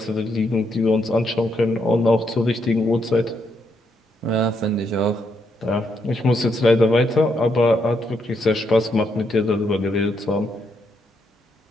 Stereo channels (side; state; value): both; normal; correlation 0.77